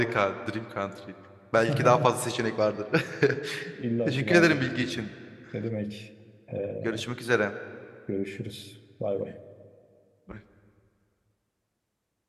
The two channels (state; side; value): identical; both; correlation 1.00